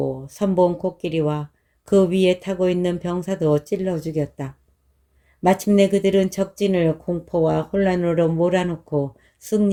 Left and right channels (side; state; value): both; identical; correlation 1.00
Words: 선봉 코끼리와 그 위에 타고 있는 병사도 찔러 죽였다. 마침내 그들은 적진을 공포와 혼란으로 몰아놓고